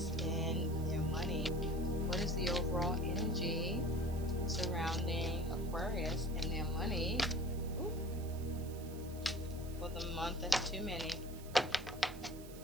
and their money? What is the overall energy surrounding Aquarius and their money? Ooh. For the month, that's too many.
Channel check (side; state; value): right; noise; hiss, 18 dB below the sound